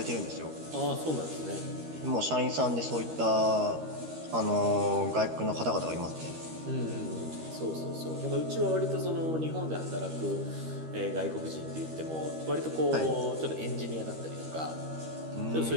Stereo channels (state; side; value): late; left; 13 ms